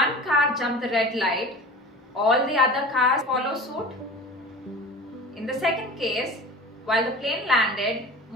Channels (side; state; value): both; normal; correlation 0.36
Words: car jumped the red light, all the other cars follow suit. In the second case, while the plane landed,